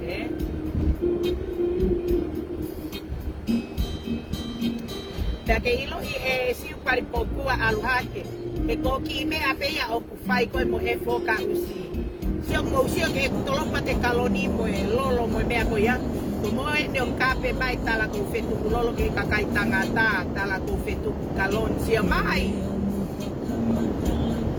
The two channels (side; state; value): both; identical; correlation 1.00